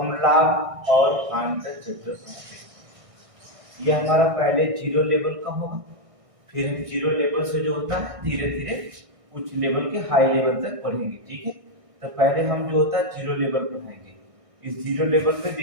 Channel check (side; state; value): left; late; 1.6 ms